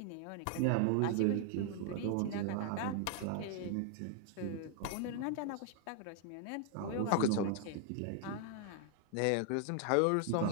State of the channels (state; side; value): different; both; correlation 0.00